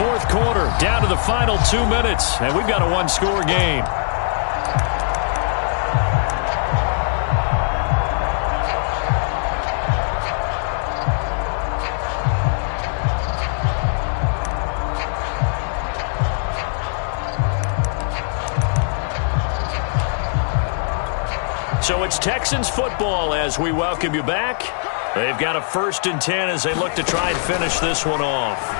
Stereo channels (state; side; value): silent; right; digital silence